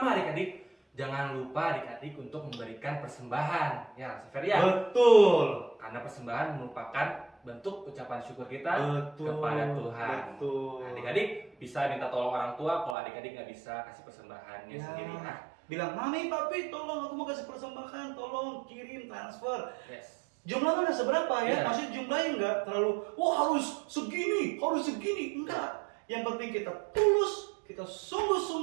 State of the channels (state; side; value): drops out; left; at 13.0 s